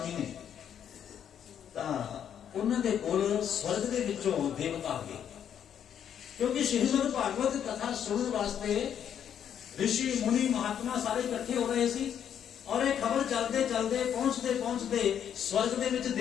ने, उन्होंने कोल स्वर्ग के विचों देवता आ गए, क्योंकि श्रीमद भागवत कथा सुनने वास्ते ऋषि मुनि महात्मा सारे इकट्ठे हो रहे सी। और एक खबर चलते चलते पहुंचते पहुंचते स्वर्ग के विच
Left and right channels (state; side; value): quieter; right; 9.0 dB